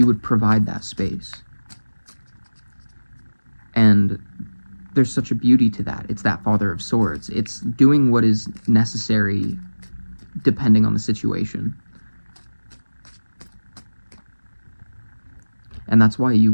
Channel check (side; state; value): both; inverted; correlation -1.00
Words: would provide that space. And there's such a beauty to that. It's that Father of Swords. It's doing what is necessary depending on the situation. And that's why